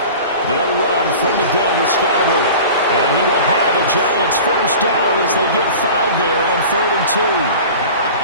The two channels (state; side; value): inverted; both; correlation -0.38